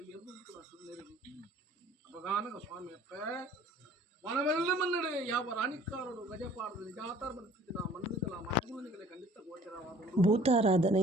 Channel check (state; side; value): normal; both; correlation 0.53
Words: ಎದ್ದು ಸುಂದರಿ ಅಪಗಾನಗ ಸ್ವಾಮಿ ಅಪ್ಪ ಮನವೆಲ್ಲ ಮನ್ನಡೆ ಯಾವ ರಾಣಿಕಾರರು ಗಜಪಾಡದ ನಿಜಾತಾರ ಬರುತ್ತಿದ್ದ ಮನ್ನಿಗಳ ಮಾತುಗಳಿಗೆ ಖಂಡಿತ ಗೋಚರವಾದ